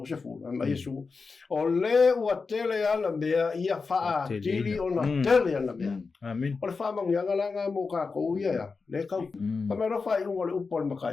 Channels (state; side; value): quieter; right; 4.6 dB